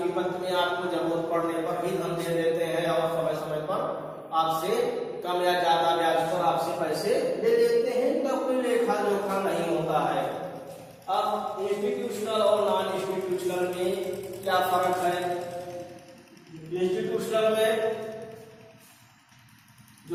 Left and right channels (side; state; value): both; identical; correlation 1.00